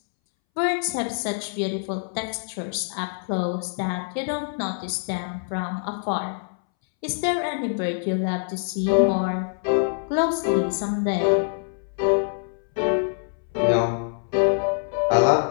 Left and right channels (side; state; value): right; silent; 62 dB below the other